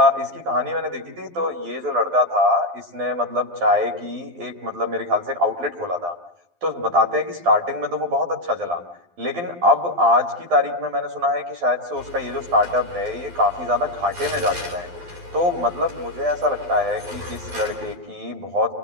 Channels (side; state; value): left; late; 12 ms